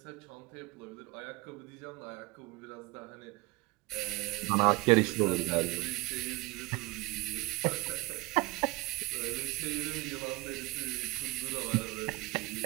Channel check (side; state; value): left; quieter; 22.5 dB